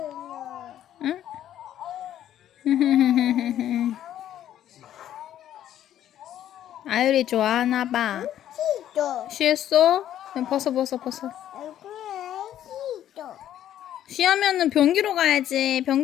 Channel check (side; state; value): right; quieter; 11.3 dB